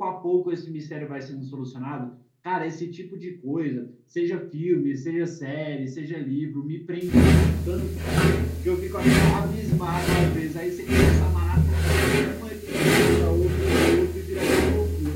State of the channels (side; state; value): both; identical; correlation 1.00